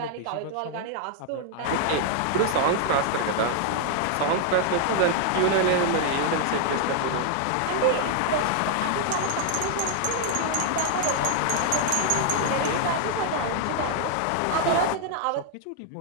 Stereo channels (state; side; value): different; both; correlation 0.00